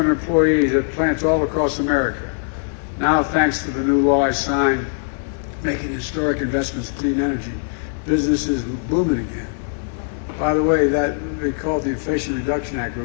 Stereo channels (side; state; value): right; silent; digital silence